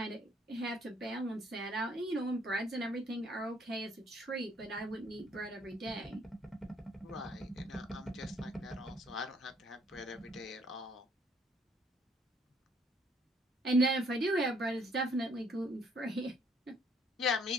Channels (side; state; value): both; normal; correlation 0.64